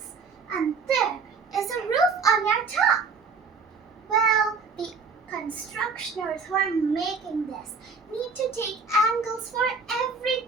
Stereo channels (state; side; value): quieter; left; 4.8 dB